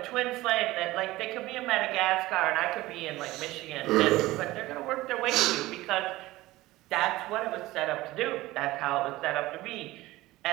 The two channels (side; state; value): left; quieter; 18.1 dB